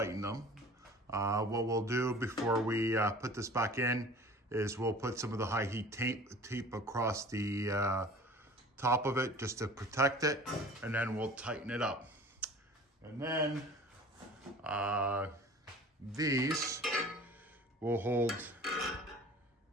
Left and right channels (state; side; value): normal; both; correlation 0.44